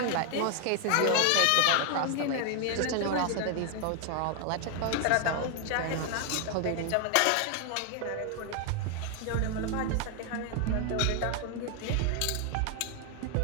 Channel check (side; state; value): both; different; correlation 0.00